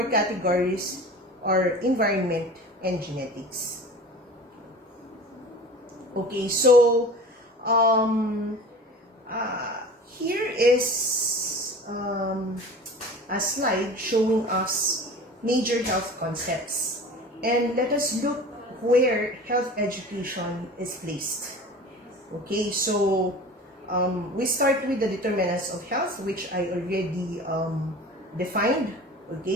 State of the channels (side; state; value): both; normal; correlation 0.39